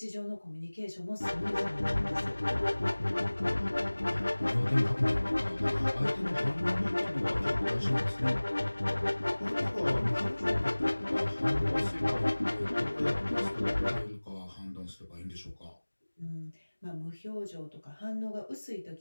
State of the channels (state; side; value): inverted; both; correlation -1.00